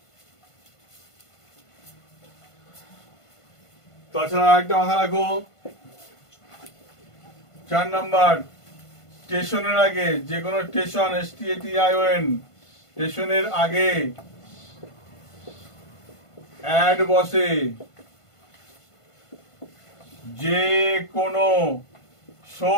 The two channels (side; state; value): right; late; 1.5 ms